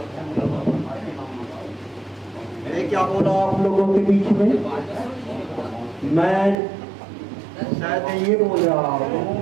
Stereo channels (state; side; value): drops out; left; at 6.6 s